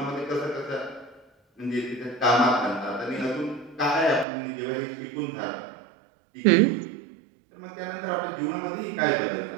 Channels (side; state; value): left; drops out; at 4.2 s